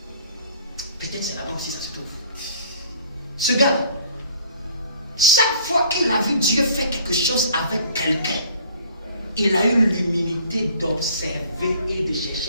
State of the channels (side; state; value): both; inverted; correlation -0.54